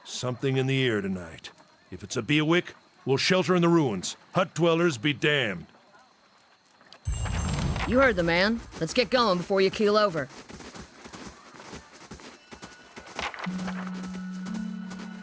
Something in the air tonight. If it's a Bewick, we'll shelter in the ruins. Hut dwellers be damned. You heard the man. Let's get going before you keel over.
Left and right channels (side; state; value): both; identical; correlation 1.00